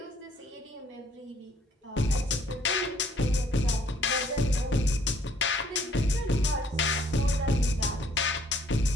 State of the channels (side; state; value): both; normal; correlation 0.63